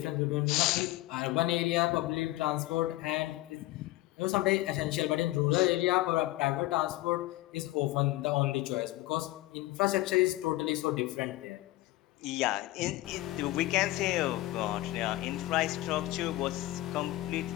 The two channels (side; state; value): right; quieter; 17.8 dB